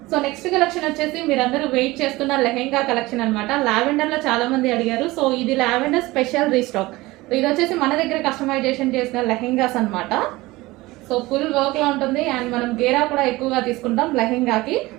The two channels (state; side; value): quieter; left; 20.1 dB